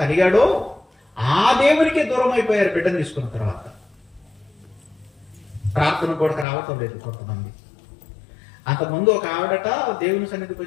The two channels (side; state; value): right; drops out; at 6.5 s